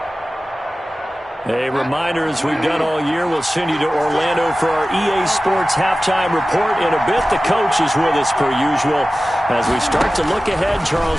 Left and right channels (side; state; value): both; normal; correlation 0.96